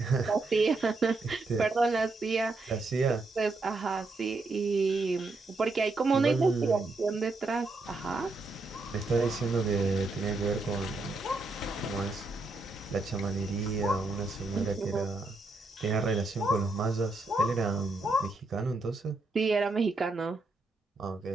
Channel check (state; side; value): quieter; left; 3.2 dB